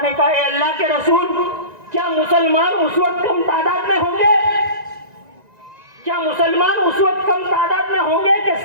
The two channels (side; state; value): left; late; 1.9 ms